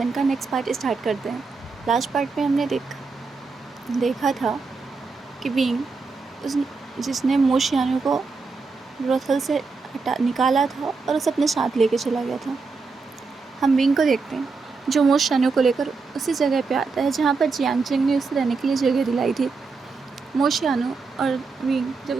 का नेक्स्ट पार्ट स्टार्ट करते हैं। लास्ट पार्ट में हमने देखा था कि बीइंग उस जिसने मोशियानो को ब्रोथल से निकाला था और उसे अपने साथ लेके चला गया था। हम बीइंग को देखते हैं जो मोशियानो को लेकर उसी जगह पे आता है जहाँ पर जियांग चेंग ने उसे रहने के लिए जगह दिलाई थी। मोशियानो और बीइंग जब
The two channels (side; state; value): left; quieter; 4.4 dB